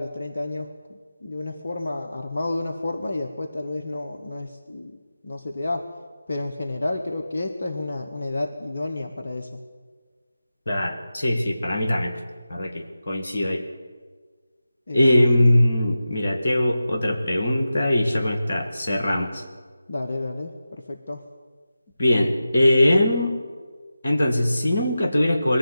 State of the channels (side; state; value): both; inverted; correlation -0.93